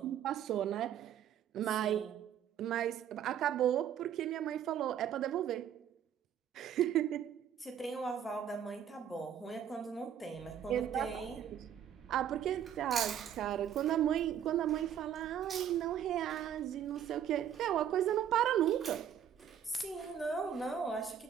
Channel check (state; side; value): quieter; left; 9.4 dB